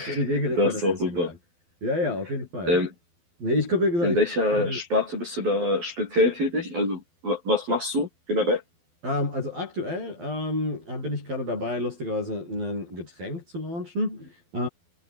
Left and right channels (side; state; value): left; late; 12 ms